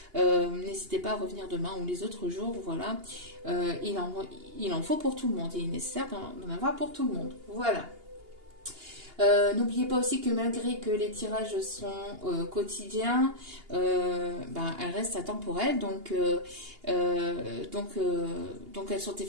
N'hésitez pas à revenir demain ou les autres jours. Voilà. Il en faut pour tout le monde. Il est nécessaire d'en avoir pour tout le monde. Voilà. N'oubliez pas aussi que malgré que les tirages sont quotidiens, elles restent atemporelles, donc elles sont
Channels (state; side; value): late; left; 2.8 ms